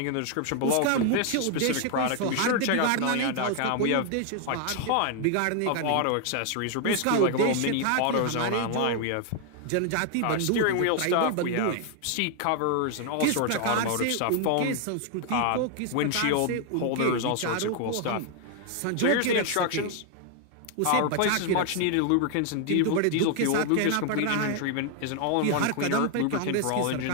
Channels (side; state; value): both; different; correlation 0.00